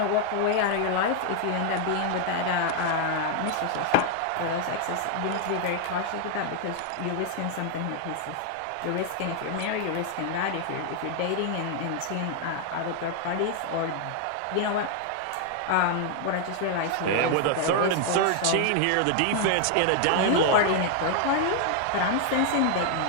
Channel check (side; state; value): both; different; correlation 0.00